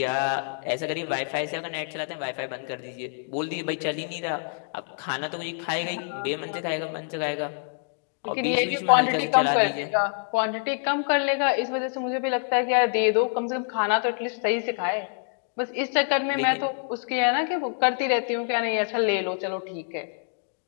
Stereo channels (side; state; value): right; silent; 61 dB below the other